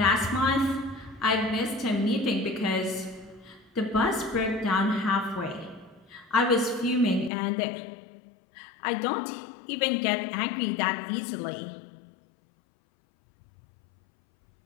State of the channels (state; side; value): drops out; right; at 7.3 s